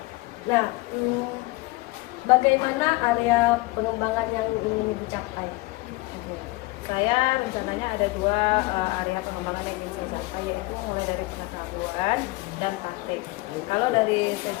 Nah, bagaimana area pengembangan yang ingin dicapai? Saya rencananya ada dua area pengembangan yang ingin saya capai, yaitu mulai dari pengetahuan dan praktik. Kalau dari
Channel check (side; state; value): right; quieter; 22.3 dB